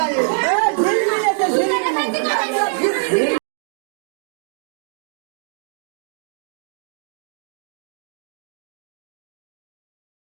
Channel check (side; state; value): left; silent; digital silence